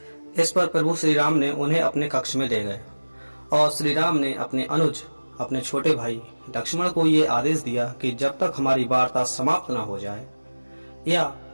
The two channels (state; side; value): inverted; both; correlation -1.00